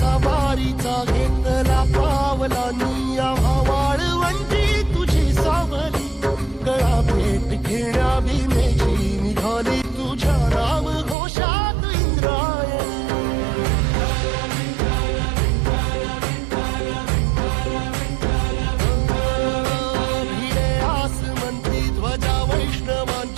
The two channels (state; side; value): drops out; left; at 11.2 s